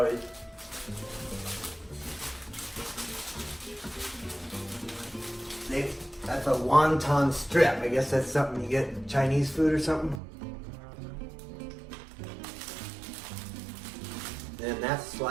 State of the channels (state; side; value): drops out; left; at 10.2 s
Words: That's a wonton strip. I guess that's something you get in Chinese food or something. Then that's